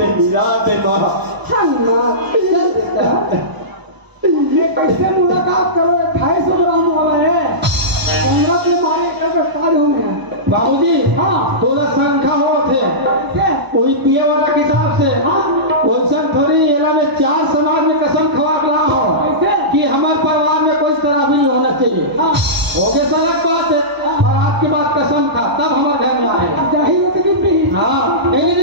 मिला दे माँ। हाँ माँ चल बेटा कैसे मुलाकात करो 250 ग्राम हमारे पंगत में मारे काल हो गया। बाबूजी हाँ थोड़ा संख्या हो थे कैसे वही पिए वाला किताब से हाँ वैसे थोड़ी एला में चार समाज में कसम खवा ना हो कैसे कि हमारे परिवार में कोई तरह भी नहीं होना चाहिए हाँ हो गया सड़क बात है और आपकी बात कसम खा तब हमारे घर में आए जाहिर होती कि पी हाँ एक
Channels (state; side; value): late; left; 1.0 ms